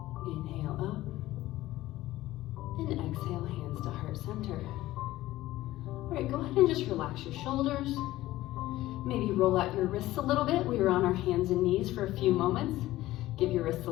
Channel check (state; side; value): quieter; right; 16.2 dB